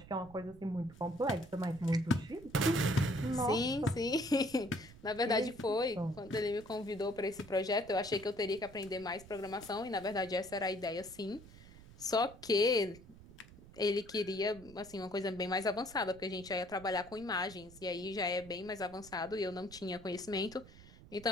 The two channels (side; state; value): right; noise; rumble, 19 dB below the sound